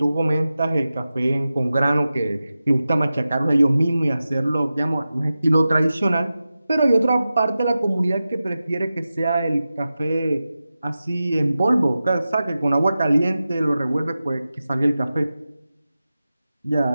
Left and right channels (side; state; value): both; inverted; correlation -0.94